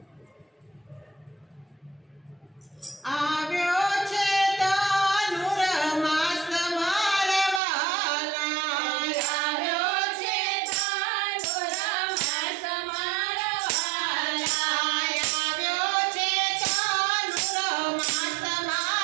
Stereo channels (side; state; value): left; drops out; at 7.6 s